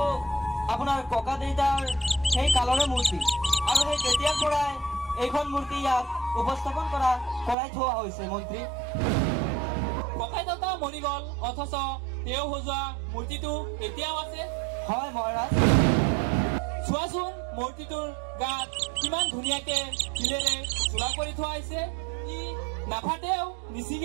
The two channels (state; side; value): drops out; left; at 7.6 s